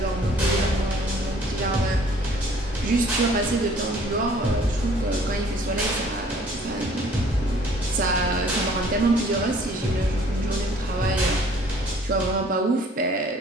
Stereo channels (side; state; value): both; normal; correlation 0.56